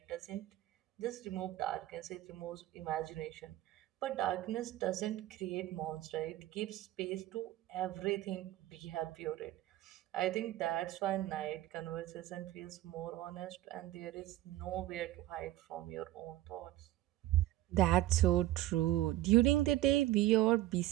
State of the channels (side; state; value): left; quieter; 15.0 dB